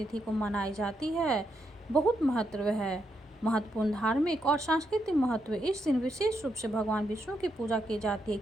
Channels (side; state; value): both; normal; correlation 0.81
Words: को मनाई जाती है, बहुत महत्वपूर्ण धार्मिक और सांस्कृतिक महत्व। इस दिन विशेष रूप से भगवान विष्णु की पूजा की जाती है,